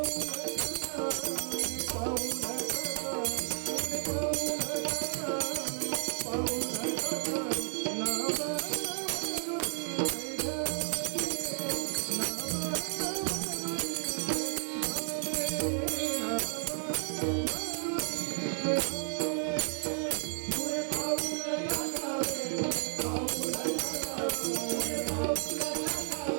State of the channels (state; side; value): silent; left; 56 dB below the other